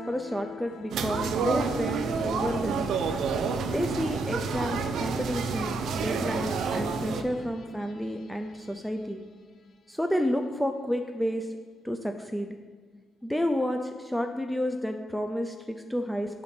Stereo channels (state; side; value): normal; both; correlation 0.82